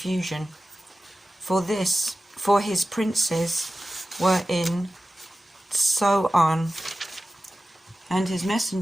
For his princes were in Zoan, and his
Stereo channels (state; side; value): normal; both; correlation 0.95